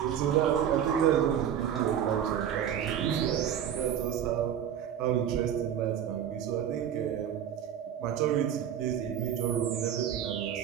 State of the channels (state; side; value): quieter; left; 9.5 dB